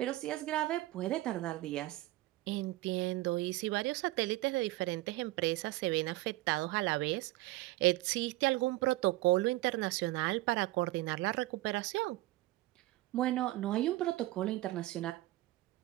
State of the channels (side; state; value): left; quieter; 18.5 dB